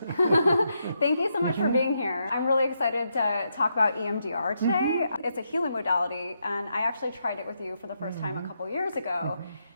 Thank you so much for being here. I'm really excited to talk about EMDR today. It's a healing modality, and I actually tried it with you for the first time a couple years ago.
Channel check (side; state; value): both; inverted; correlation -0.81